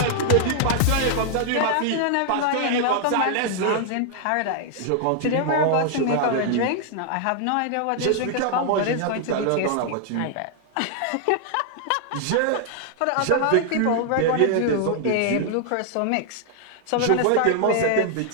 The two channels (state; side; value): different; both; correlation 0.00